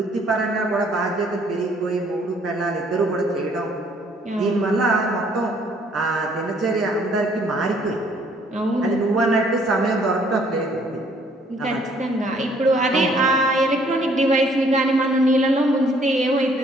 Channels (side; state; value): both; normal; correlation 0.62